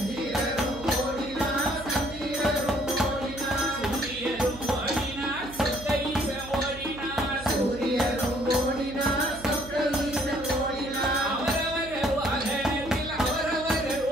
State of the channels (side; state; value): right; noise; hum, 15 dB below the sound